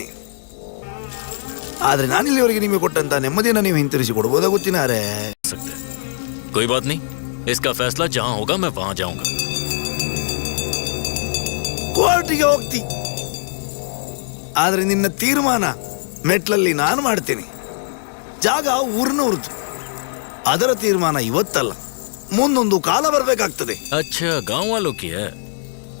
ಆದ್ರೆ ನಾನಿಲ್ಲಿವರೆಗೆ ನಿಮಗೆ ಕೊಟ್ಟಂತ ನೆಮ್ಮದಿಯನ್ನು ನೀವು ಹಿಂತಿರಿಸಿ ಕೊಡ್ಬೋದಾ ಗೊತ್ತಿನಾರೆ? कोई बात नहीं, इसका फैसला जहां होगा मैं वहां जाऊंगा। ಕೋರ್ಟಿಗೆ ಹೋಗ್ತಿ, ಆದ್ರೆ ನಿನ್ನ ತೀರ್ಮಾನ ಮೆಟ್ಲಲ್ಲಿ ನಾನು ಮಾಡ್ತೇನೆ. ಜಾಗ ಊರಿನವ್ರದ್ದು, ಅದರ ತೀರ್ಮಾನ ಇವತ್ತಲ್ಲ, ಮುಂದೊಂದು ಕಾಲ ಬರಬೇಕಾಗ್ತದೆ. अच्छा, गांव वालों की है।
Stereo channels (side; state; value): right; silent; digital silence